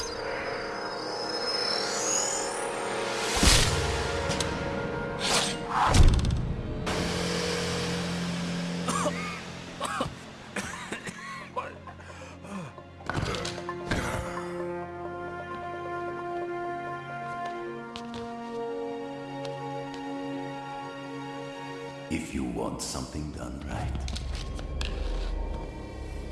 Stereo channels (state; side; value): identical; both; correlation 1.00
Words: If you want something done right.